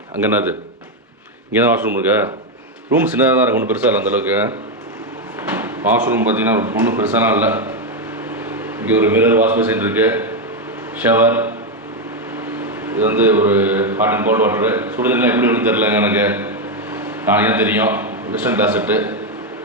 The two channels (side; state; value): both; normal; correlation 0.05